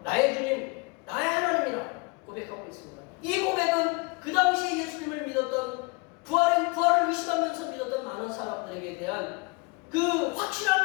나의 주님, 나의 하나님이라 고백하고 있습니다. 이 고백은 그 당시에 예수님을 믿었던 부활을 의심하면서 믿었던 많은 사람들에게 대한 그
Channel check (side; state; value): right; quieter; 29.2 dB